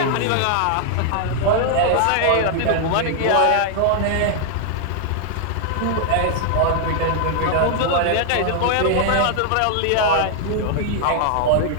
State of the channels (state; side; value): different; both; correlation 0.00